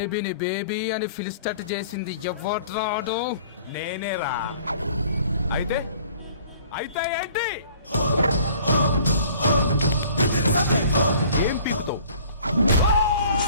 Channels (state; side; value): inverted; both; correlation -0.51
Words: బేబీ అని ఫిలిస్టట్ చేసింది ఎవరు? నేనేరా. అయితే అయితే ఏంటి? ఏం పీకుతావు?